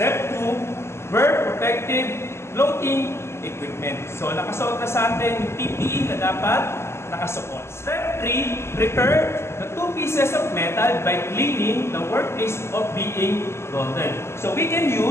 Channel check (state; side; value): late; right; 0.13 ms